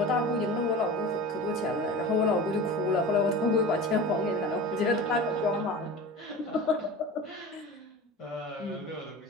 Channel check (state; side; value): normal; both; correlation 0.34